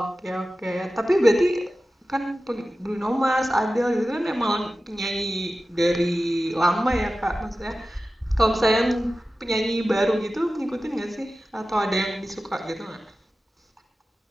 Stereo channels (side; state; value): both; normal; correlation 0.95